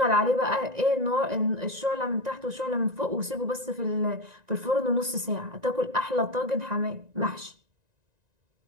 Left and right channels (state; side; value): late; left; 1.9 ms